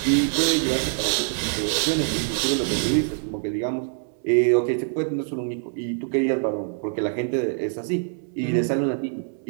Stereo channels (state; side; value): silent; left; digital silence